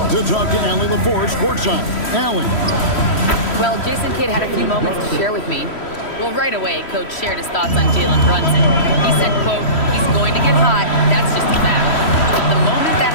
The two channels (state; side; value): late; right; 3.1 ms